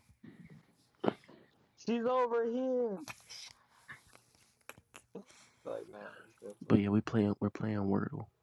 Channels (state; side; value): identical; both; correlation 1.00